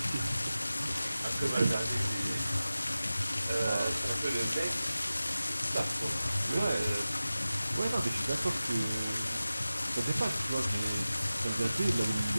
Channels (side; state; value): both; inverted; correlation -0.95